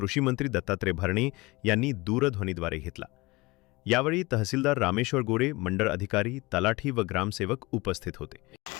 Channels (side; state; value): right; quieter; 22.8 dB